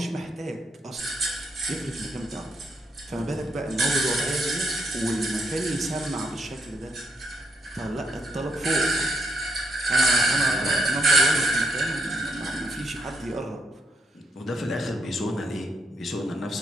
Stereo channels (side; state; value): both; normal; correlation 0.76